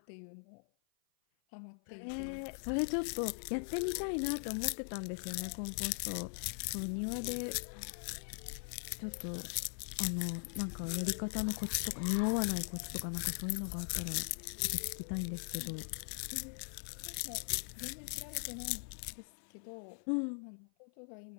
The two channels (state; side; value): silent; right; 51 dB below the other